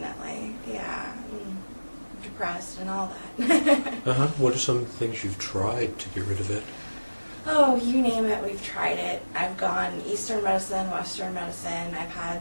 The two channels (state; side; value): inverted; both; correlation -1.00